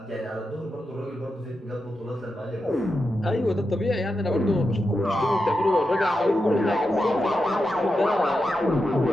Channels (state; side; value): normal; both; correlation 0.88